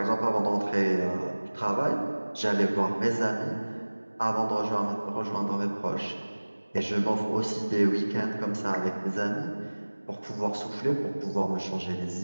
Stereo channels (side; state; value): both; inverted; correlation -1.00